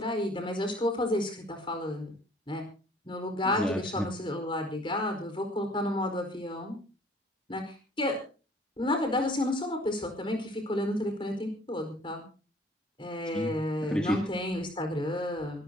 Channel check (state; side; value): normal; both; correlation 0.55